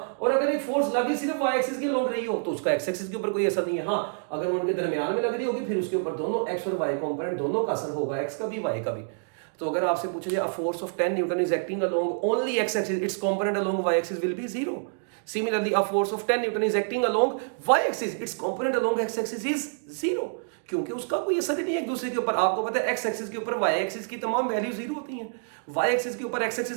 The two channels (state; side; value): silent; left; digital silence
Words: और अगर एक फोर्स लग ही सिर्फ वाई एक्सिस के अलोंग रही हो, तो उसका एक्स एक्सिस के ऊपर कोई असर नहीं है। हाँ, अगर वो उनके दरमियान में लग रही होगी, फिर उसके ऊपर दोनों एक्स और वाई कंपोनेंट दोनों का असर होगा, एक्स का भी वाई का भी। तो अगर आपसे पूछा जाए, a force of 10 newton is acting along only X axis, its component along Y axis will be 0। Similarly, a force of 10 Newton is acting along y-axis. Its component along x-axis is 0, क्योंकि उसका कोई असर ही नहीं है एक दूसरे के ऊपर। आपको पता है x एक्सिस के ऊपर y एक्सिस की तमाम वैल्यू 0 होती हैं, y एक्सिस के ऊपर x